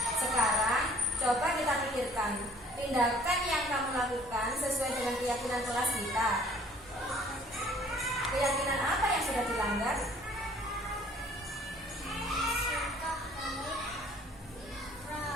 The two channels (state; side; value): normal; both; correlation 0.55